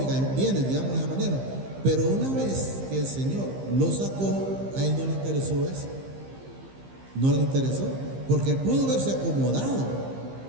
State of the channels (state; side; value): late; left; 15 ms